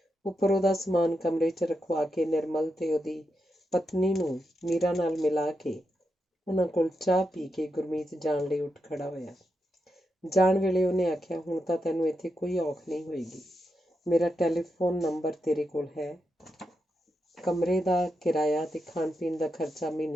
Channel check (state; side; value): normal; both; correlation 0.86